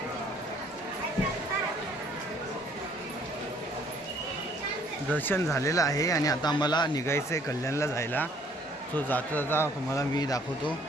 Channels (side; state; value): both; normal; correlation 0.61